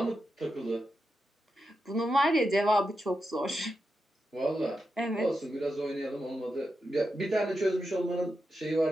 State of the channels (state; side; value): normal; both; correlation 0.87